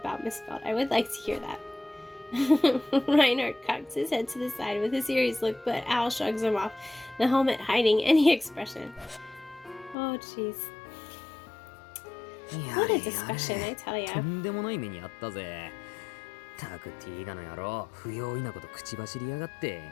Miss Felt? I would like to hear that. Reinhardt cocks his head to the side with a serious look, but Al shrugs him off, the helmet hiding any expression. Oh, jeez. や What a れ discussion, や I れ tell と ya. んでもない目にあったぜ。たくティーガの野郎、不用意なこと口走りやがって。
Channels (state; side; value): drops out; right; at 10.0 s